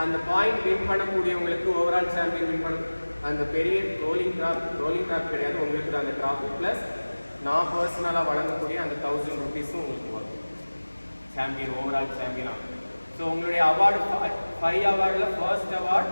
அந்த பாயிண்ட் வின் பண்ணக்கூடியவங்களுக்கு ஓவரால் சாம்பியன் வின் பண்ண அந்த பெரிய ரோலிங் ட்ராப் கிடையாது, உங்களுக்கு தான் அந்த ட்ராஃபி. ப்ளஸ் நான் பர்சனலாக வழங்கக்கூடிய அந்த 1000 rupees-ம் உங்களுக்கு வரும். சாம்பியன், ஓவரால் சாம்பியனாக. ஸோ உங்களுடைய அவார்டு 5 அவார்டில் ஃபர்ஸ்ட் அவார்டு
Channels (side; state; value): both; inverted; correlation -1.00